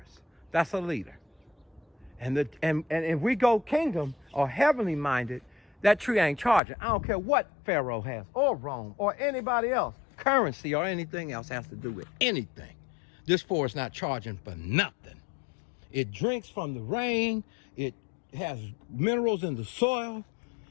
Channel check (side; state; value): right; drops out; at 6.6 s